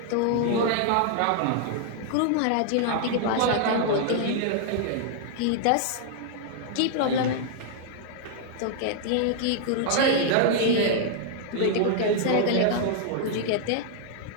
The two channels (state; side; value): different; both; correlation -0.01